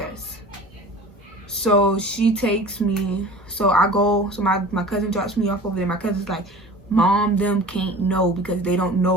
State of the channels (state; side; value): normal; both; correlation 0.40